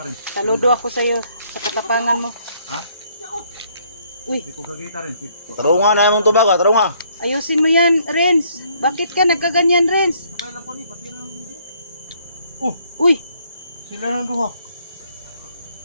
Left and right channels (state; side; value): inverted; both; correlation -0.66